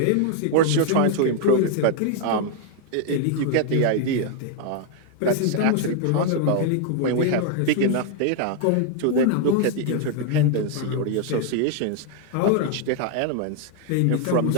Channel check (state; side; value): different; both; correlation 0.00